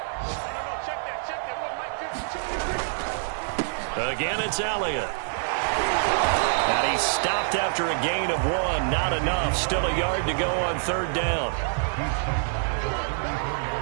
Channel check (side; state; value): left; silent; digital silence